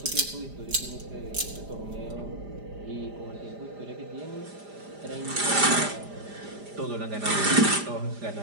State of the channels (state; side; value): late; left; 5.0 ms